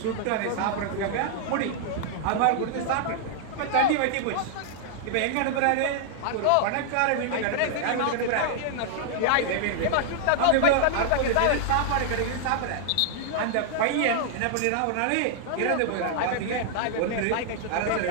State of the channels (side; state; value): both; different; correlation -0.01